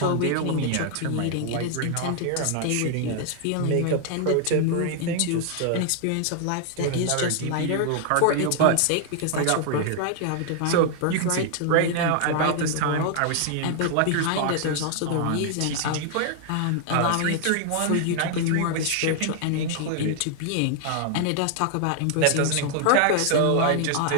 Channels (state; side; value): different; both; correlation 0.00